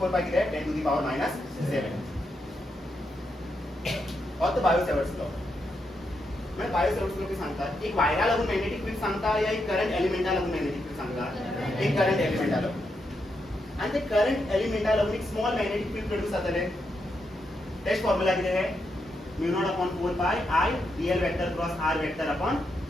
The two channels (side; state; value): both; normal; correlation 0.82